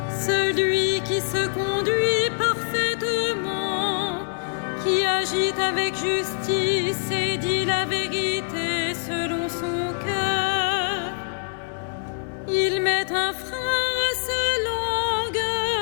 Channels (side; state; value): right; silent; 62 dB below the other